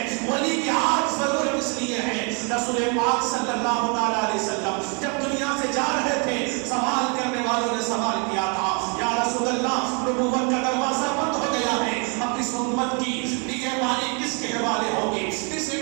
ولی کی آج ضرورت اس لیے ہے۔ رسول پاک صلی اللہ علیہ وسلم جب دنیا سے جا رہے تھے، سوال کرنے والوں نے سوال کیا تھا، یا رسول اللہ نبوت کا دروازہ بند ہو گیا ہے، اب اس امت کی نگہبانی کس کے حوالے ہوگی، اس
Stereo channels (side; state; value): left; quieter; 35.4 dB